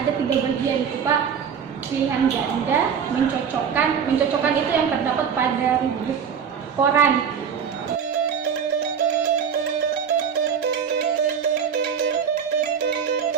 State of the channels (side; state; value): left; quieter; 7.3 dB